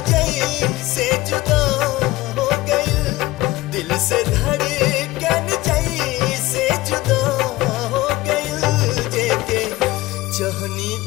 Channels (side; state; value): right; quieter; 18.5 dB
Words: जैसे जुदा हो गई, दिल से धड़कन जैसे जुदा हो गई। जेके चाहनी